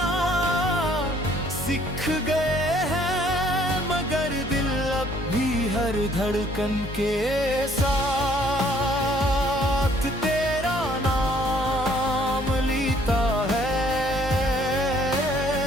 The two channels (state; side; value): normal; both; correlation 0.61